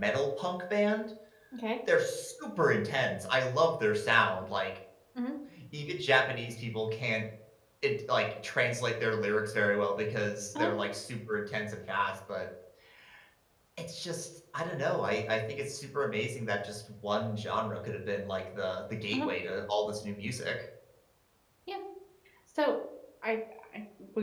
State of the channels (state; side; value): identical; both; correlation 1.00